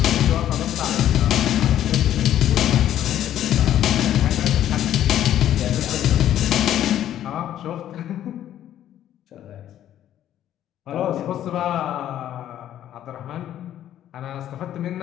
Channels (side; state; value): right; quieter; 11.5 dB